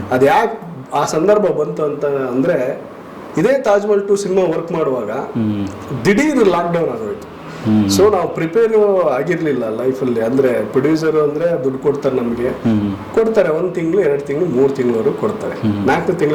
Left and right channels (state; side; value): identical; both; correlation 1.00